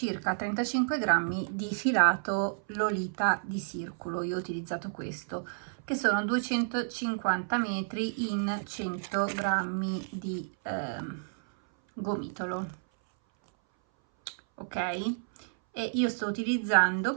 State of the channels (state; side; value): silent; left; 57 dB below the other